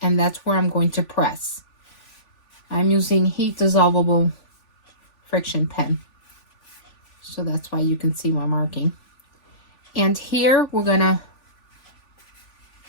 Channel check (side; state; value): right; late; 3.5 ms